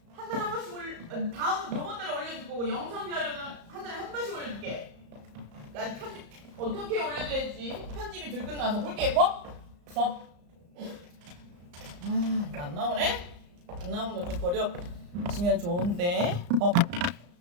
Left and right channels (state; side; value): late; left; 34 ms